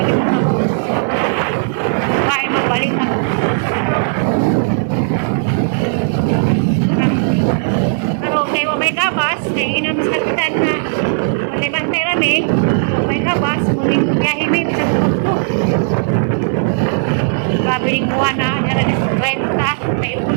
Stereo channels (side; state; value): left; silent; digital silence